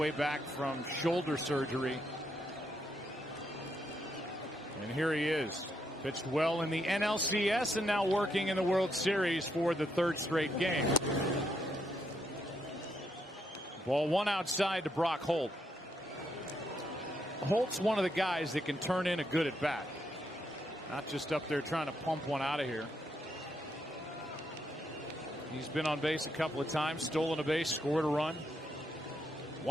back from shoulder surgery. And here he is. Pitched well in the NLCS and now working in the World Series for the 3rd straight game. Ball 1 outside to Brock Holt. Holt's one of the guys that can turn in a good at bat. Not just up there trying to pump one out of here. He's been on base a couple of times, stolen a base, scored a run.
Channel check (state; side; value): normal; both; correlation 0.78